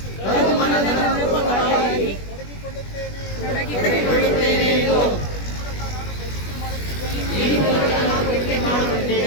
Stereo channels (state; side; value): late; right; 21 ms